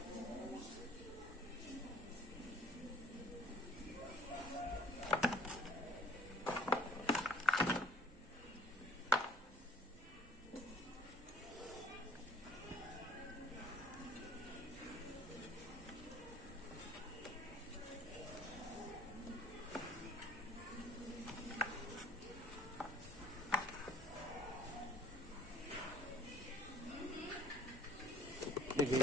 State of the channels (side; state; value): both; normal; correlation 0.53